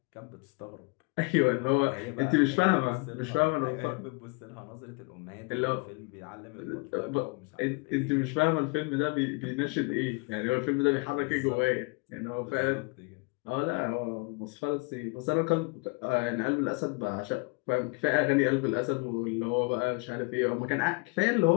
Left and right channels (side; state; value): right; quieter; 30.3 dB